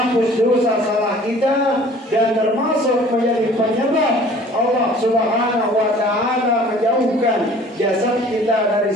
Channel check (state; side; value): normal; both; correlation 0.50